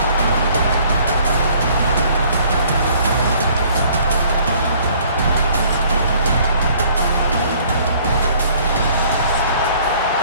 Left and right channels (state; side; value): inverted; both; correlation -0.57